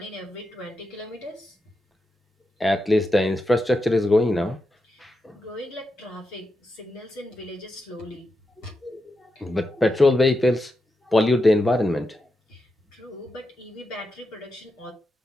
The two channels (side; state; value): both; normal; correlation 0.87